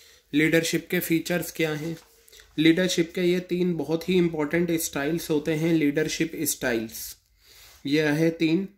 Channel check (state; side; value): identical; both; correlation 1.00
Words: लीडरशिप के फीचर्स क्या हैं। लीडरशिप के ये 3 बहुत ही इंपॉर्टेंट स्टाइल्स होते हैं, लीडरशिप स्टाइल्स। ये रहे 3,